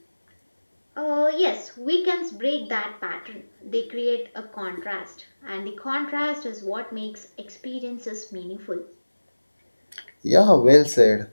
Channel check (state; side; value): inverted; both; correlation -1.00